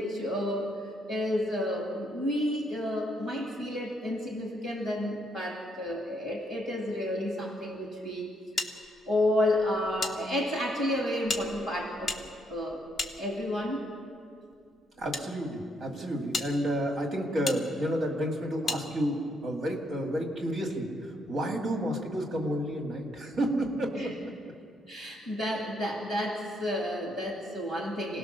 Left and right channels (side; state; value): both; normal; correlation 0.74